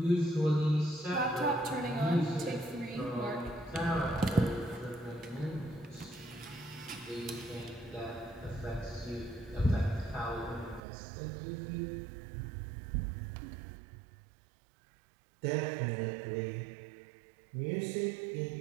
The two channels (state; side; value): drops out; left; at 10.8 s